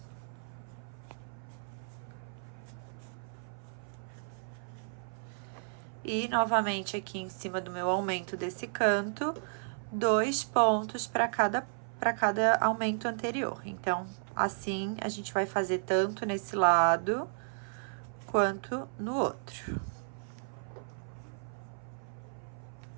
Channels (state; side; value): silent; left; 55 dB below the other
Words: E novamente aqui em cima do meu aumento desse canto, 2 pontos para cada aumento anterior. Então, assim a gente vai fazer tanto nesse lado quanto no outro.